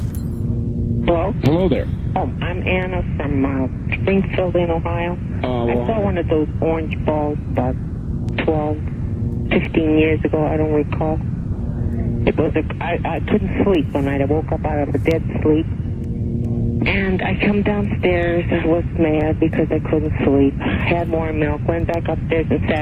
Hello? Hello there. Oh, I'm Anna from Springfield in Ohio. I saw one of those orange balls about 12, 15 years ago. I don't recall. It was I couldn't sleep one night. I woke up out of a dead sleep. And I come downstairs. I was mad because I couldn't sleep. Had more milk, went back upstairs and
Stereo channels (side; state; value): both; identical; correlation 1.00